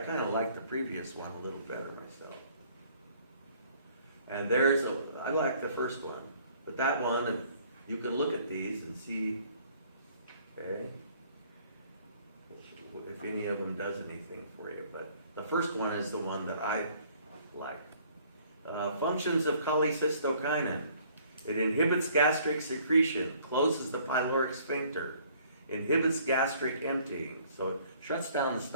of like the previous one a little better myself. And I like the first one, but that one, you can look at these and see, okay, if any of them does anything for you. But the first one is the one that I like. Functions of cholecystokinin. It inhibits gastric secretion, closes the pyloric sphincter, inhibits gastric emptying, so it shuts down the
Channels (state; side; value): inverted; both; correlation -0.59